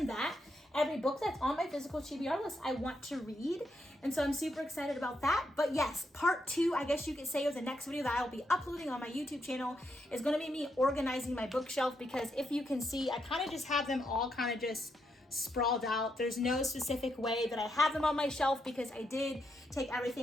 that, every book that's on my physical TBR list, I want to read. And so I'm super excited about that. But yes, part 2, I guess you could say, of the next video that I'll be uploading on my YouTube channel is going to be me organizing my bookshelf, because if you can see, I kind of just have them all kind of just sprawled out. There's no specific way that I have them on my shelf because I did take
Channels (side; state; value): both; normal; correlation 0.80